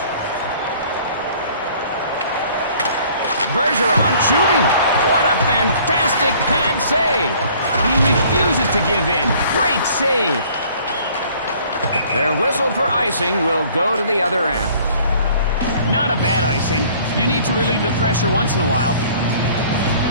Bergeron shooting. What a fantastic pad save. He refuses to give in. Great save. Their whistle for icing will go to the other end. Not a bad icing. You need to relieve the pressure once in a while.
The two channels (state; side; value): inverted; both; correlation -0.54